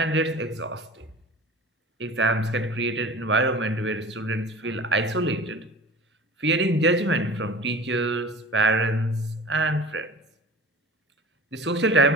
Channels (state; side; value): normal; both; correlation 0.39